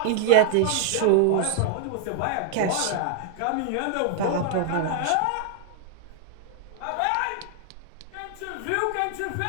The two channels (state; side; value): different; both; correlation 0.00